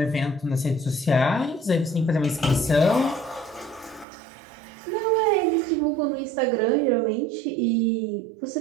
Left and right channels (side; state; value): left; drops out; at 4.0 s